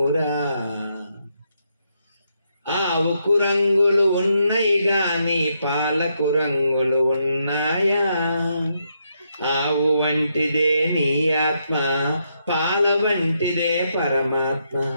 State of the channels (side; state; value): both; inverted; correlation -0.79